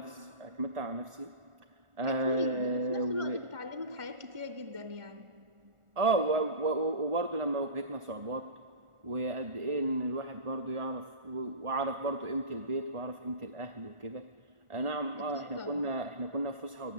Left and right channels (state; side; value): late; left; 1.4 ms